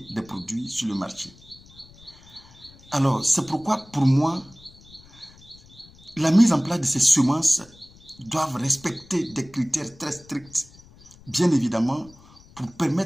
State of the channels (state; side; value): noise; left; rumble, 24 dB below the sound